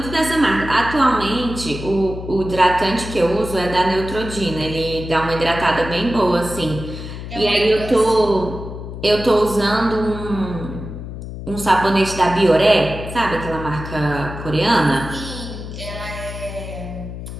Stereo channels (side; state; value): left; noise; hum, 9 dB below the sound